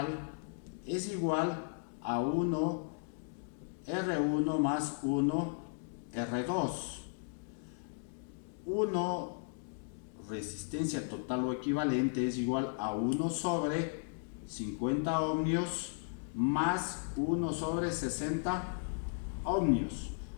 es igual a 1 R1 más 1 R2. 1 resistencia total o equivalente es igual a 1 sobre 50 ohmios más 1 sobre 60 ohmios.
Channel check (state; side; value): silent; right; digital silence